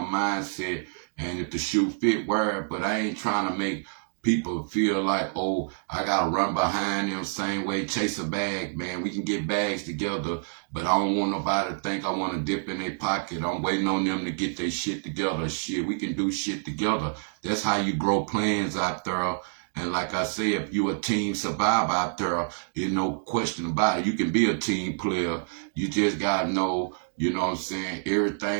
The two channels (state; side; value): silent; left; digital silence